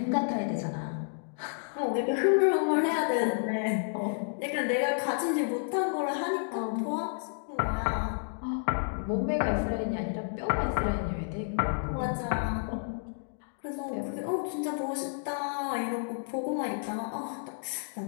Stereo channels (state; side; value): silent; right; digital silence